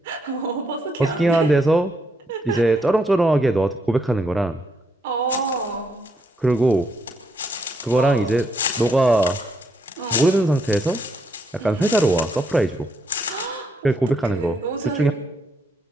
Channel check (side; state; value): both; normal; correlation 0.76